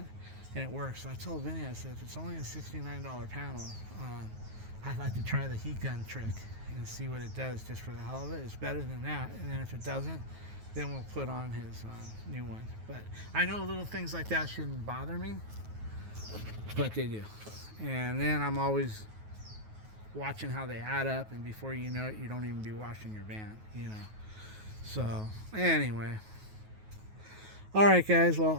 and it works. I told Vinny, I said, if it's only a $69 panel, I'd like to try the heat gun trick and see what it does just for the hell of it. It's better than that, and then if it doesn't, then we'll put on his new one. But I know little things like that shouldn't bother me, but they do. And then I'm always watching how they add up, and before you know it, you don't even be washing your van, you know. So anyway, all right guys, well,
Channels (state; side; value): late; left; 9.4 ms